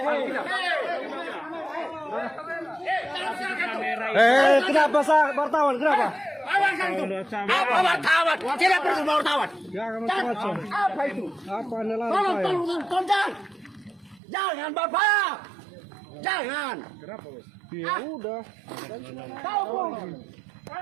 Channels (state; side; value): drops out; left; at 14.2 s